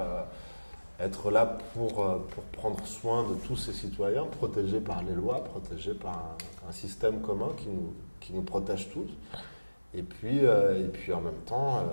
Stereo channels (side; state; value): both; inverted; correlation -1.00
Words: être là pour prendre soin de tous ses citoyens, protégés par les lois, protégés par un système commun qui nous protège tous. Et puis en même temps,